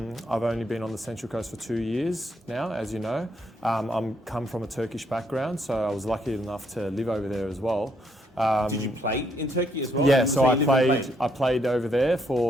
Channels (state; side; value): normal; both; correlation 0.72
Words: only been on the Central Coast for 2 years now, as you know. I'm come from a Turkish background, so I was lucky enough to live over there as well. Did you play in Turkey as well? Yeah, so I played over there